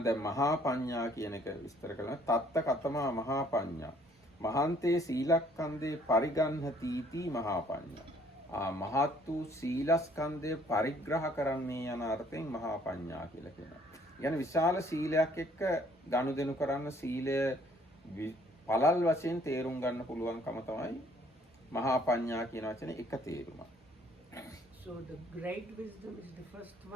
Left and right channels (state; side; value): normal; both; correlation 0.61